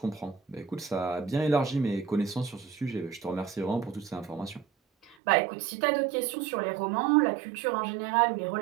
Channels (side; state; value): left; drops out; at 5.2 s